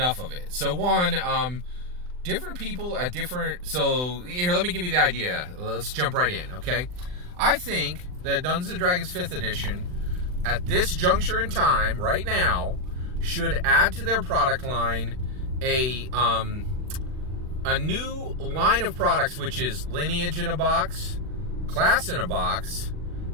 it. So one, different people at different... So, here, let me give you the idea. Let's jump right in, okay? I think that Dungeons & Dragons 5th Edition, at this juncture in time, right now, should add to their product line a new line of products, which is Lineage in a box, Class in a box,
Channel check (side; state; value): left; late; 39 ms